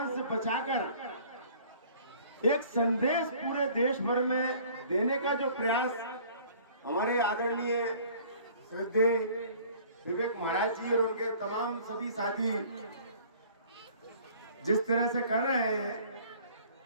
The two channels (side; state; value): both; inverted; correlation -0.52